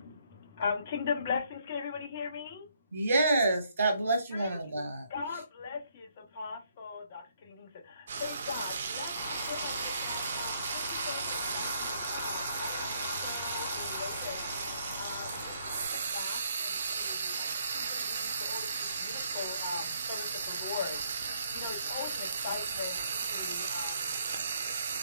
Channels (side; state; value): both; inverted; correlation -0.69